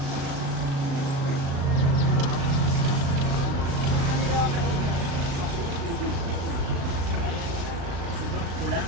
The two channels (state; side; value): late; left; 35 ms